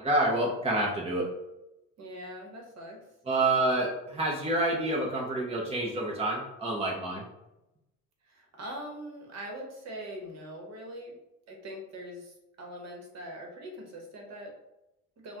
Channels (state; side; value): normal; both; correlation 0.12